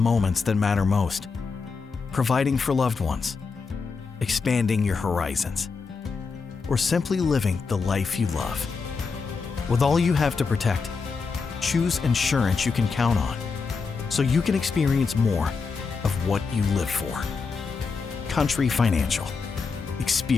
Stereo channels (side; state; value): right; quieter; 4.9 dB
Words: that matter most. Providing for loved ones, expanding your horizons, or simply living the life you love. With all you have to protect, choose insurance you can count on so you can experience more of what you live for. Country Financial.